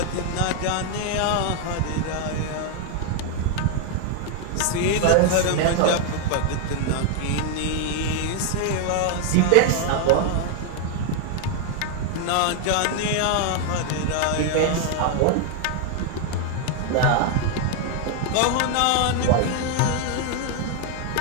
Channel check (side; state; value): both; different; correlation 0.01